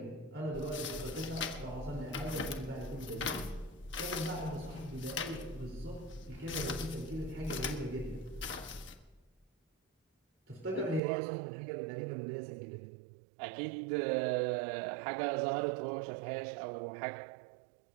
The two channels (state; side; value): drops out; left; at 11.0 s